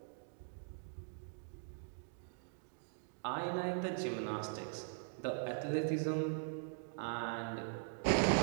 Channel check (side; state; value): left; silent; digital silence